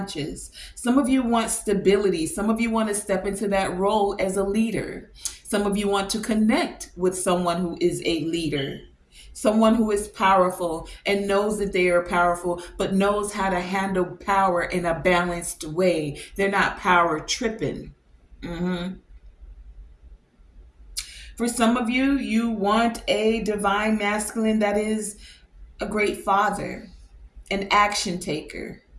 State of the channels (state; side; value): identical; both; correlation 1.00